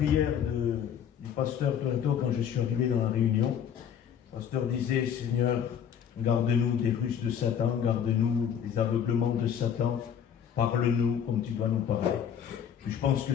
du pasteur Toronto quand je suis arrivé dans la réunion. Le pasteur disait: Seigneur, garde-nous des ruses de Satan, garde-nous des aveuglements de Satan, parle-nous comme tu dois nous parler. Et je pense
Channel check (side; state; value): right; quieter; 8.5 dB